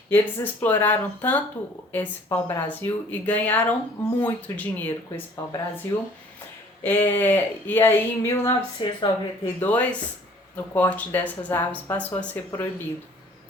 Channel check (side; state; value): both; normal; correlation 0.54